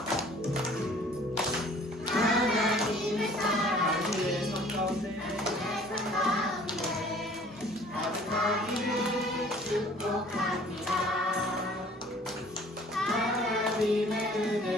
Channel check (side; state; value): both; normal; correlation 0.52